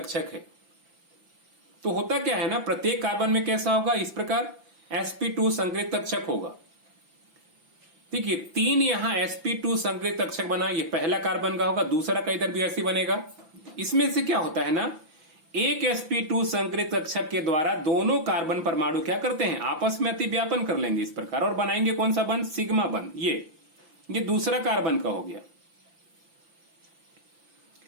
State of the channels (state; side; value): late; left; 5.9 ms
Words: है। तो होता क्या है ना, प्रत्येक कार्बन में कैसा होगा, इस प्रकार sp2 संकरित कक्षक होगा। देखिए 3 यहां sp2 संकरित कक्षक बना, ये पहला कार्बन का होगा, दूसरा का इधर भी ऐसे बनेगा। इसमें से क्या होता है ना, एक sp2 संकरित कक्षक के द्वारा दोनों कार्बन परमाणु क्या करते हैं, आपस में अतिव्यापन कर लेंगे इस प्रकार, और बनाएंगे कौन सा बंध, सिग्मा बंध। ये दूसरा कार्बन का हो गया।